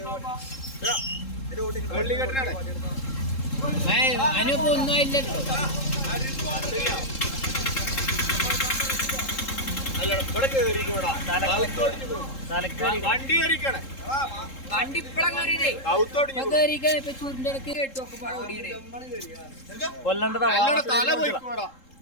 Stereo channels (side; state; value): right; late; 3.7 ms